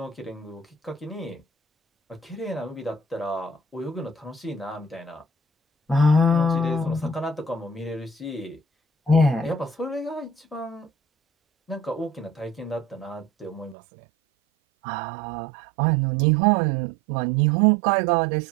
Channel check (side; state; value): left; drops out; at 13.8 s